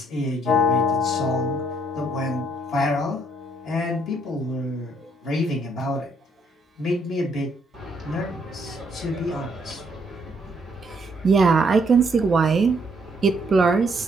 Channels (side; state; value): both; normal; correlation 0.69